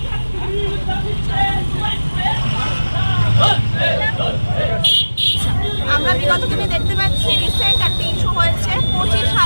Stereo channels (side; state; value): both; inverted; correlation -1.00